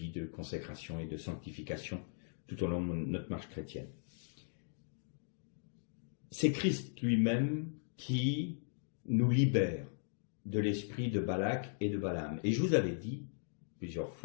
de consécration et de sanctification tout au long de notre marche chrétienne. C'est Christ lui-même qui nous libère de l'esprit de Balak et de Balaam. Et je vous avais dit plusieurs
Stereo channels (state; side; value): silent; right; digital silence